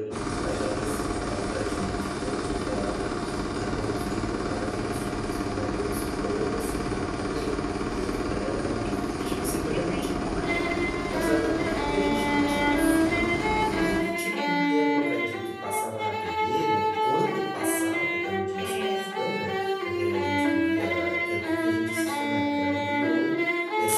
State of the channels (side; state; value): both; identical; correlation 1.00